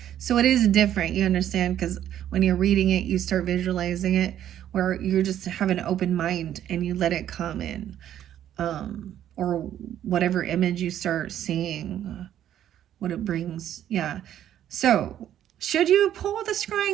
So it is different, you understand, because when you're reading it, you start visualizing it, where you just have an open mind and you let it come in. Or whatever image you start seeing, what it brings. Yeah. So should you pull the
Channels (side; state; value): left; quieter; 11.1 dB